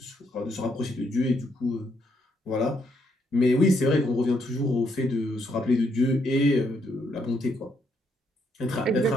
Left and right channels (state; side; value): normal; both; correlation 0.74